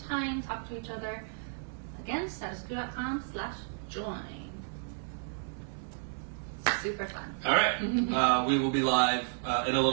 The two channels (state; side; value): silent; left; 56 dB below the other